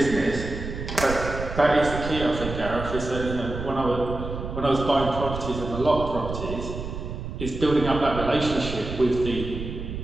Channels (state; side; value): noise; right; rumble, 7 dB below the sound